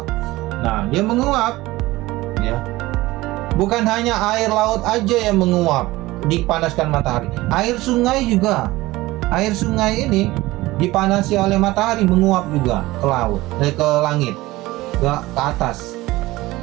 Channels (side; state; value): left; quieter; 18.9 dB